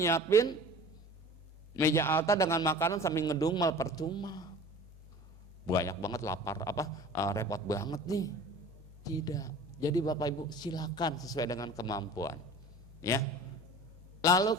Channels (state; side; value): normal; both; correlation 0.41